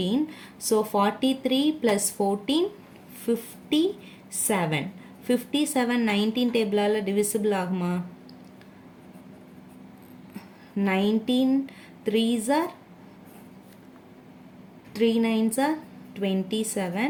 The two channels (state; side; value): identical; both; correlation 1.00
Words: ஸோ 43 + 14 57. 57 19 டேபிளால் டிவிசிபிள் ஆகுமா? 19 3s are 3 9s are 27.